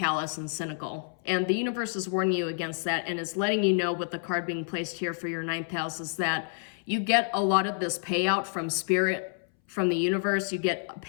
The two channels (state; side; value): silent; right; 59 dB below the other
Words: and cynical. And the universe is warning you against that, and it's letting you know with the card being placed here for your 9th house is that you get a lot of this payout from spirit, from the universe. You get